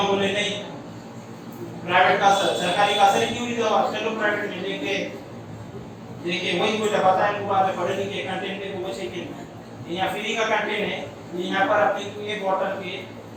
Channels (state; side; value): identical; both; correlation 1.00